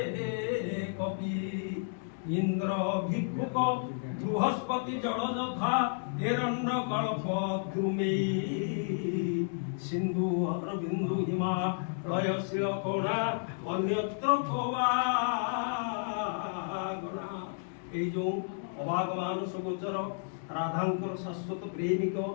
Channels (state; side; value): silent; right; digital silence